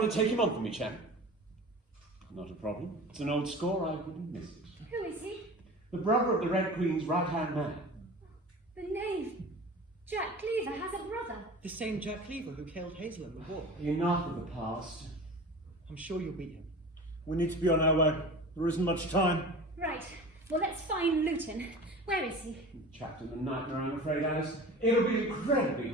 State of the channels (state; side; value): normal; both; correlation 0.37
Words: to take him on for me, champ? Not a problem. It's an old score, I wouldn't miss it. Who is he? The brother of the Red Queen's right-hand man. The knave. Jack Cleaver has a brother. The same Jack Cleaver who killed Hazel in the war. Enough of the past. I'm sure you'll beat him. We need to be on our way. There isn't much time. Right. Well, let's find Luton. Where is he? Trapped in the nightmare, I'm afraid, Alice. It'll be incredibly